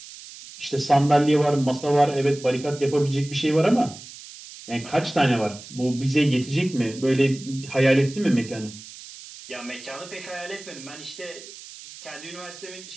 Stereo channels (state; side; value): noise; right; hiss, 16 dB below the sound